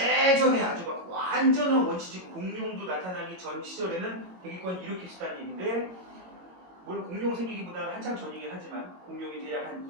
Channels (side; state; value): left; late; 22 ms